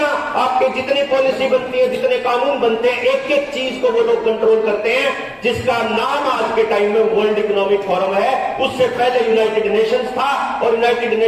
आपके जितनी पॉलिसी बनती है, जितने कानून बनते हैं, एक एक चीज को वो लोग कंट्रोल करते हैं, जिसका नाम आज के टाइम में वर्ल्ड इकोनॉमिक फोरम है। उससे पहले यूनाइटेड नेशंस था, और यूनाइटेड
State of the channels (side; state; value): both; identical; correlation 1.00